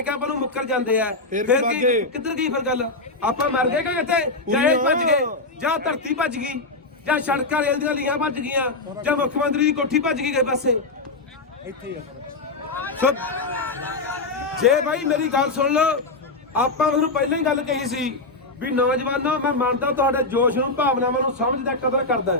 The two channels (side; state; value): right; quieter; 3.3 dB